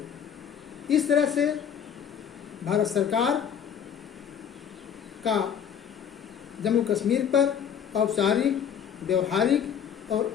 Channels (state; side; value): quieter; right; 8.2 dB